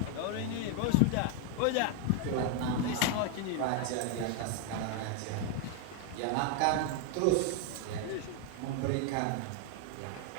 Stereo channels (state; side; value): different; both; correlation 0.00